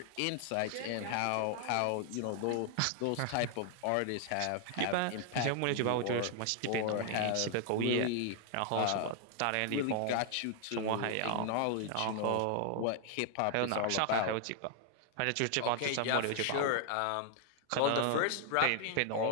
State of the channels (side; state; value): both; different; correlation 0.00